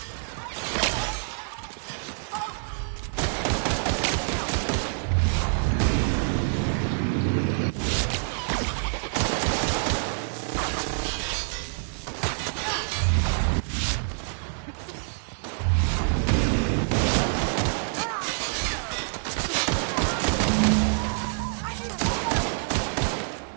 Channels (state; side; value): silent; left; digital silence